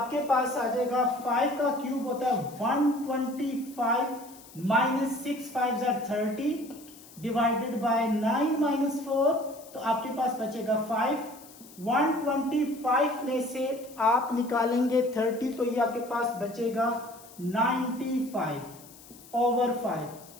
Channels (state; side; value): noise; left; hiss, 21 dB below the sound